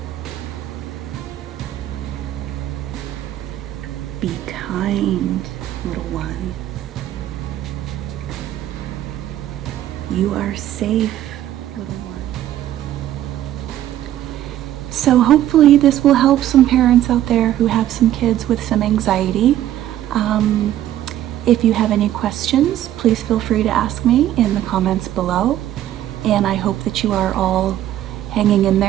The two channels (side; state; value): left; quieter; 12.5 dB